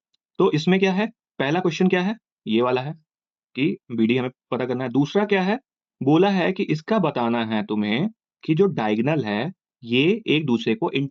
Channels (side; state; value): both; identical; correlation 1.00